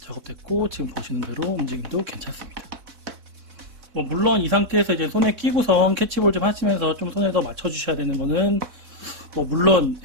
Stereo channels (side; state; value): left; late; 4.1 ms